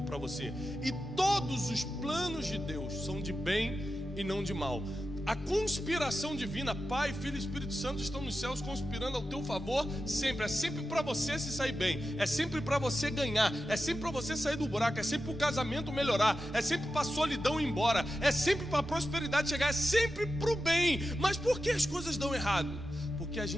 para você. E todos os planos de Deus são de bem e não de mal. A conspiração divina, Pai, Filho e Espírito Santo estão nos céus conspirando ao teu favor sempre. É sempre para você se sair bem, é sempre para você ganhar, é sempre para você sair do buraco, é sempre para o casamento melhorar, é sempre para a solidão ir embora, é sempre para a prosperidade chegar, é sempre para o bem. Mas por que as coisas dão errado? Porque a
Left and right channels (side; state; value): both; normal; correlation 0.91